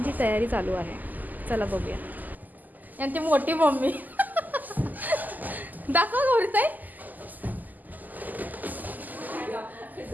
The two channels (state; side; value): late; left; 0.083 ms